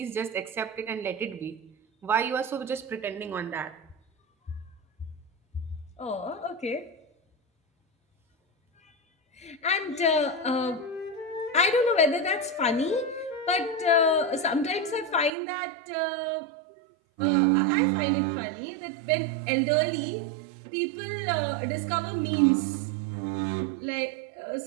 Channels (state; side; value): drops out; left; at 15.3 s